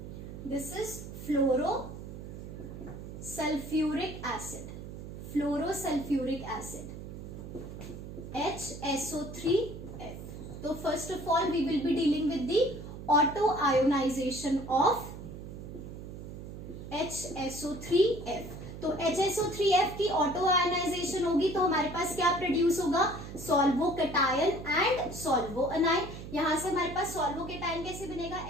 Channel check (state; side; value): noise; right; hum, 11 dB below the sound